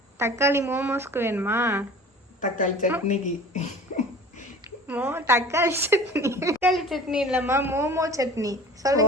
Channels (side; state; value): both; normal; correlation 0.42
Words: தக்காளி மோமோஸ்க்கு வேணுமா? தக்காளி சட்னிக்கு. தக்காளி சட்னி. தக்காளி சட்னி இல்லைம்மா, மோமோ சட்னி